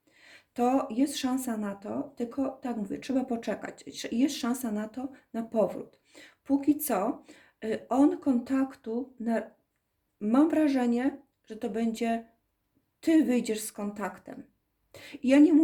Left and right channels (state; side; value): identical; both; correlation 1.00